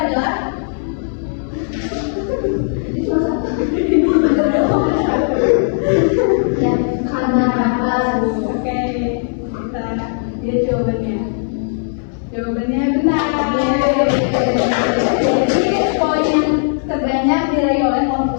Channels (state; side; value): silent; right; 65 dB below the other